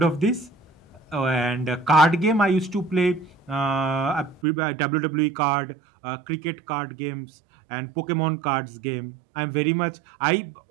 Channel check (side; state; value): left; drops out; at 4.4 s